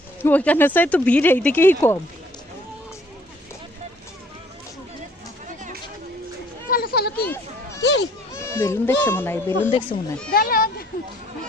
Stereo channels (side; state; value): both; normal; correlation 0.59